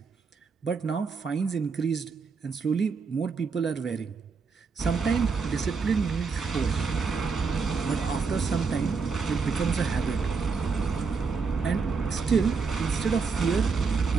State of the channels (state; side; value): quieter; left; 5.1 dB